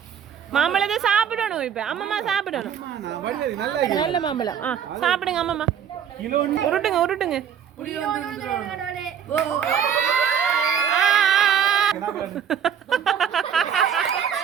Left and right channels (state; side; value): quieter; left; 8.4 dB